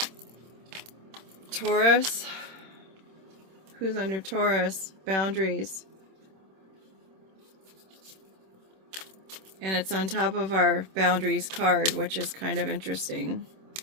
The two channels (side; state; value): left; late; 26 ms